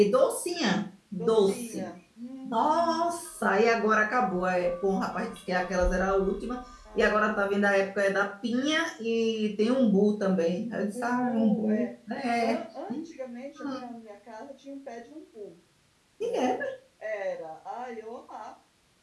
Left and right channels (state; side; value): identical; both; correlation 1.00